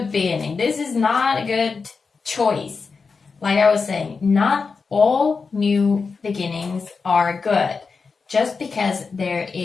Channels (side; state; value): right; quieter; 4.8 dB